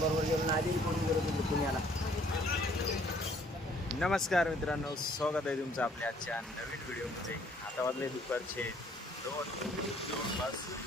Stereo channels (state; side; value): normal; both; correlation 0.61